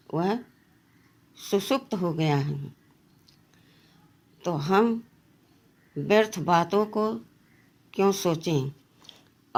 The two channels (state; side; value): identical; both; correlation 1.00